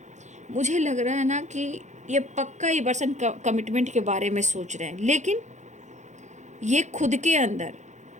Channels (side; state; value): left; late; 0.34 ms